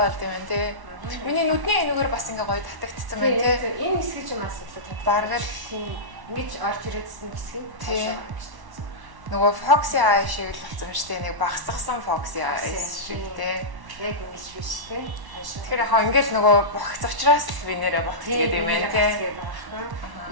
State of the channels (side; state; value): left; late; 1.1 ms